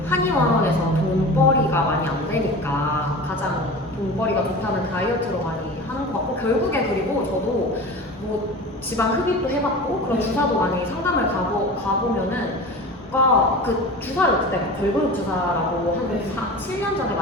한의원에서 돈벌이가 많이 안 되니까 가장 돈벌이가 좋다는 다이어트로 많이 하는 것 같고 결국에 그리고 저도 뭐 지방 흡입도 해봤고 그런 주사도 많이 상담을 가보면은 그 주사를 그때 걸그룹 주사라고 한 7년 전에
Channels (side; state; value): both; normal; correlation 0.34